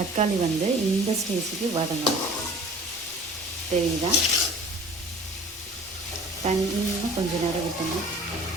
இந்த ஸ்டேஜுக்கு வதங்கணும். தெரியுதா? இன்னும் கொஞ்சம் நேரம் விட்டணும்.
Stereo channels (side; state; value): both; normal; correlation 0.46